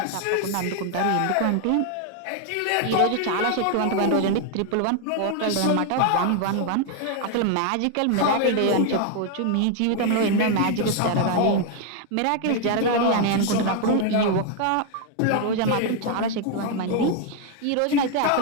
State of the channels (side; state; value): both; different; correlation 0.00